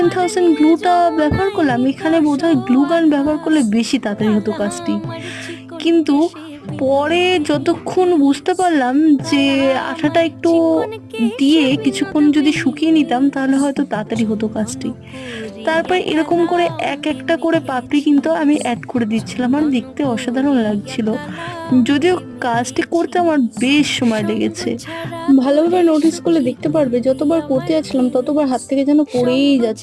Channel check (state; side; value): identical; both; correlation 1.00